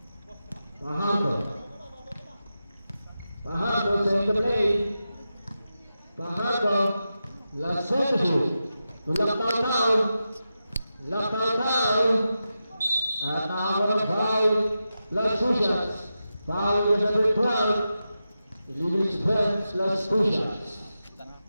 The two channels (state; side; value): inverted; both; correlation -0.90